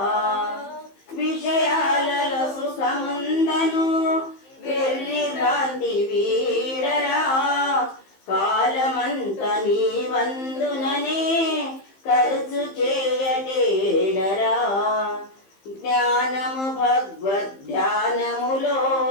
విషయాలలో సుఖముందను వెర్రి భ్రాంతి వీడరా కాలమంత నీ వందుననే ఖర్చు చేయడేడరా జ్ఞానము భగవద్ధ్యానములో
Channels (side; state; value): right; late; 15 ms